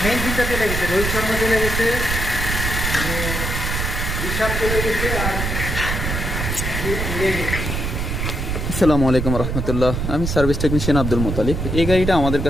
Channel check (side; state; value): right; noise; rumble, 2 dB below the sound